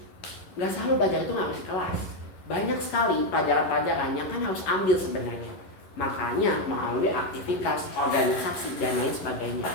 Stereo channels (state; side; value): late; right; 11 ms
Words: Nggak selalu belajar itu nggak harus di kelas. Banyak sekali pelajaran-pelajaran yang kan harus ambil sebenarnya. Makanya melalui aktivitas, organisasi, dan lain sebagainya.